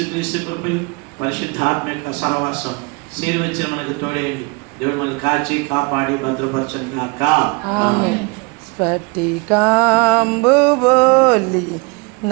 కృపయు పరిశుద్ధాత్మ యొక్క సహవాసం చేరువచ్చిన మనకు తోడేయండి. దేవుడు మనల్ని కాచి కాపాడి భద్రపరచను గాక. స్ఫటికాంబు బోలి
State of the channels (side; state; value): left; quieter; 30.0 dB